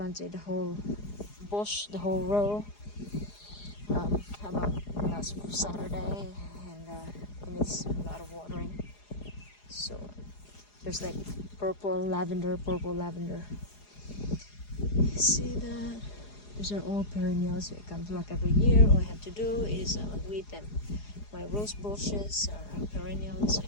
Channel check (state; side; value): late; right; 4.8 ms